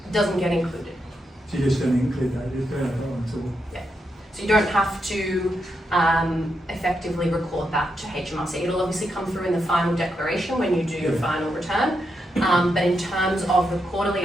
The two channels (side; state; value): both; normal; correlation 0.83